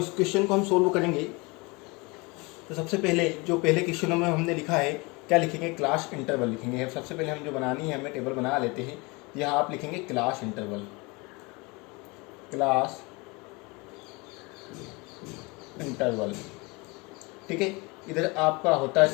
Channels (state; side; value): quieter; right; 26.6 dB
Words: क्वेश्चन को हम सोल्व करेंगे। तो सबसे पहले जो पहले क्वेश्चनों में हमने लिखा है, क्या लिखेंगे? क्लास इंटरवल लिखेंगे। सबसे पहले हम जो बनानी है हमें टेबल बना लेते हैं। यहाँ आप लिखेंगे क्लास इंटरवल, क्लास इंटरवल, ठीक है। इधर आपका होता